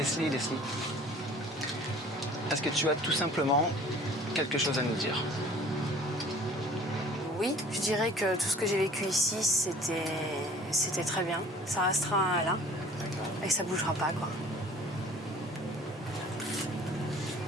est-ce que tu as tout simplement quelque chose à nous dire? Oui, je dirais que tout ce que j'ai vécu ici, c'était très bien. Ça restera là et ça bougera pas, quoi.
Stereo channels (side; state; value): both; normal; correlation 0.49